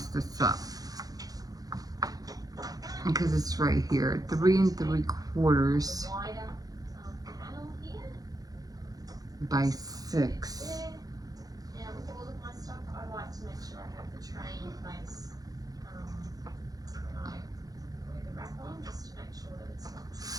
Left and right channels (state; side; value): late; left; 0.18 ms